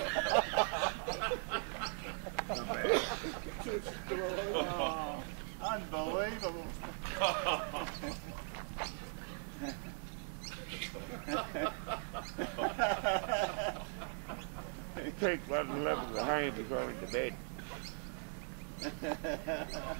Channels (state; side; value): silent; left; 51 dB below the other